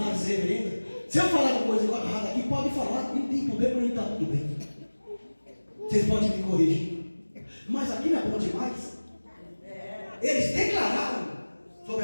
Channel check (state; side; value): inverted; both; correlation -1.00